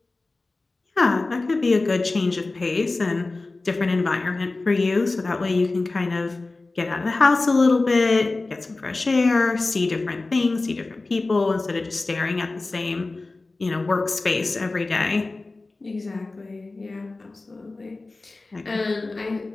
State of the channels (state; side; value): quieter; right; 3.3 dB